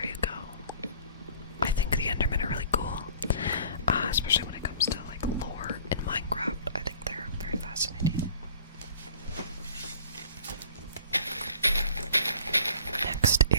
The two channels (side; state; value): both; inverted; correlation -0.49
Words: you go. I think the Endermen are really cool, especially when it comes to like lore in Minecraft. I think they're very fascinating. Next